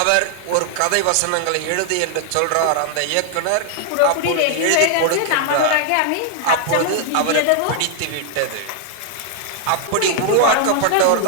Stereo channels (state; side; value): different; both; correlation 0.00